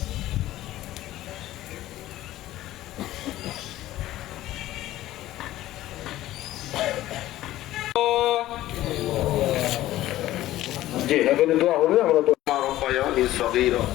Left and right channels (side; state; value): right; quieter; 14.9 dB